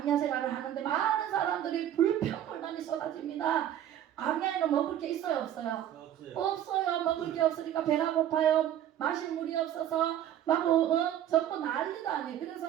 생활을 하는데 많은 사람들이 불평불만이 쏟아집니다. 광야에는 먹을 게 있어요, 없어요? 없어요. 먹을 게 없으니까 배가 고파요. 마실 물이 없어서 막 전부 난리도 아니에요.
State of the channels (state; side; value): quieter; left; 11.1 dB